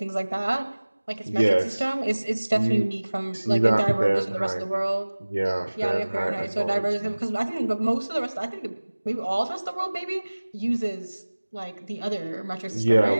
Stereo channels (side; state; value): both; inverted; correlation -1.00